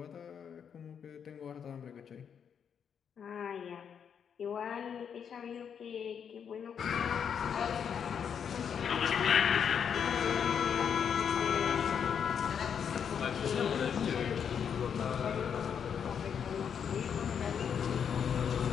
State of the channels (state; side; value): quieter; right; 7.6 dB